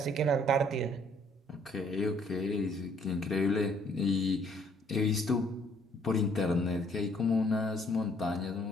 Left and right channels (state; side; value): normal; both; correlation 0.63